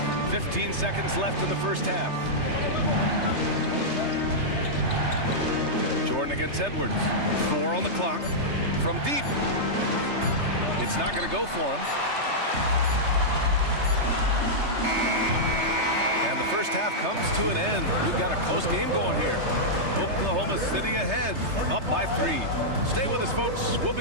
15 seconds left in the first half. Jordan against Edwards. 4 on the clock. From deep. It's not going to go for him. And the first half comes to an end. We've got a close game going here. Oklahoma City ahead, up by 3. Stay with us, folks. We'll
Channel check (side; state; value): left; late; 3.3 ms